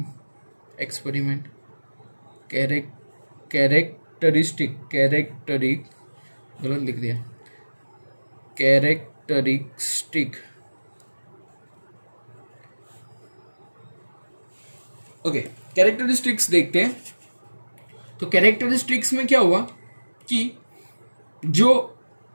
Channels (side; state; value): both; inverted; correlation -1.00